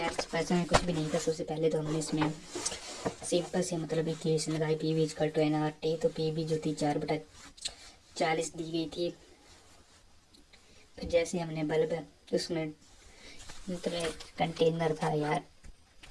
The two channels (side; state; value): both; identical; correlation 1.00